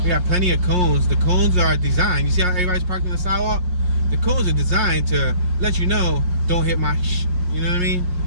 We got plenty of cones. The cones are designed. You see how everybody's parked on the sidewalk? The cones are designed to let you know, don't hit my you know what I mean?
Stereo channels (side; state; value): left; late; 5.6 ms